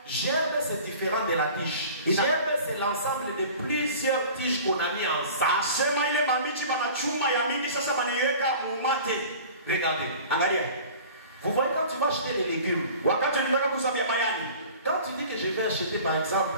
Gerbe c'est différent de la tige. Gerbe c'est l'ensemble de plusieurs tiges qu'on a mis ensemble. sema ile mambichi banachuma ya mingi sasa banaiweka mumate. Regardez. Angalia. Vous voyez quand tu vas acheter des légumes, Wakati nilitaka kusabia mayani. quand tu dis que je vais acheter par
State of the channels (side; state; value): both; inverted; correlation -0.42